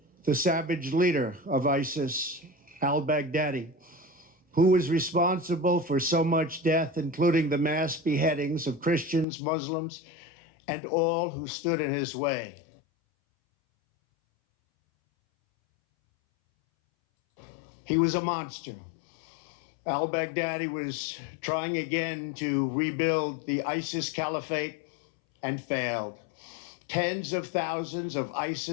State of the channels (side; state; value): right; drops out; at 9.2 s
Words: the savage leader of ISIS, al-Baghdadi, who was responsible for so much death, including the mass beheadings of Christians, Muslims, and all who stood in his way. He was a monster. Al-Baghdadi was trying again to rebuild the ISIS caliphate and failed. Tens of thousands of